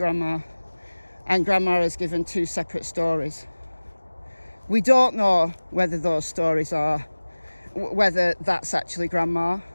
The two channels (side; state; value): both; inverted; correlation -1.00